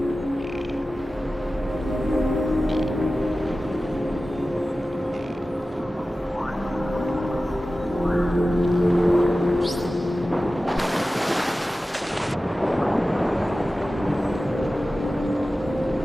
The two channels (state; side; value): normal; both; correlation 0.95